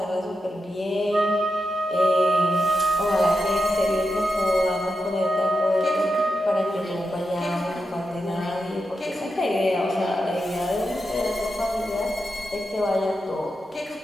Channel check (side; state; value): both; normal; correlation 0.88